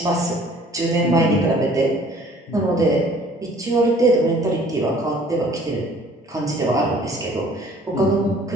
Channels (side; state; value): both; normal; correlation 0.54